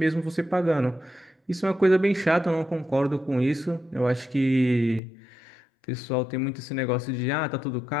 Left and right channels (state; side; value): drops out; right; at 5.0 s